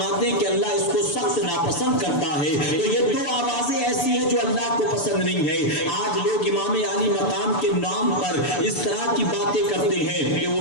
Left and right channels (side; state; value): right; late; 6.9 ms